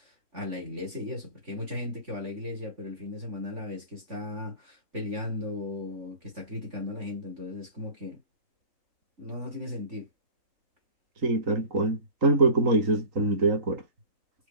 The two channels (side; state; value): left; late; 3.5 ms